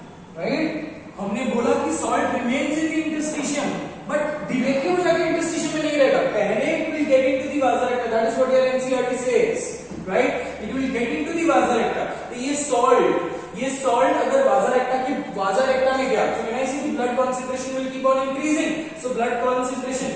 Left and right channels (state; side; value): identical; both; correlation 1.00